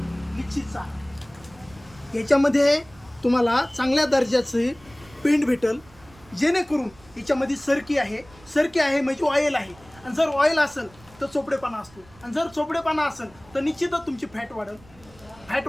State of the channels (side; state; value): right; noise; rumble, 25 dB below the sound